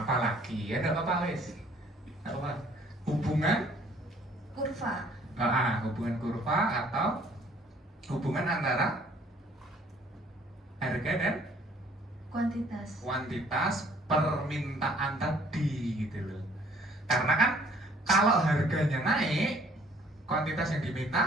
apa lagi ya, enggak apa-apa wes. Apa? Hubungan Kurva. hubungan kurva atau hubungan antara harga dan kuantitas permintaan tadi gitu loh. Karena kan kalau harganya naik, kuantitas yang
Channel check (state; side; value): normal; both; correlation 0.59